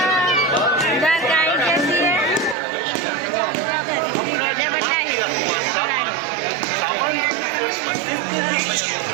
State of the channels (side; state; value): left; drops out; at 2.6 s